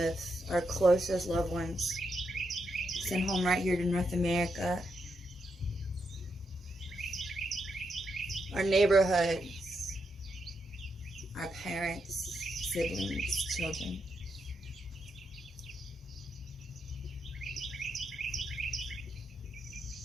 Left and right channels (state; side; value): normal; both; correlation 0.82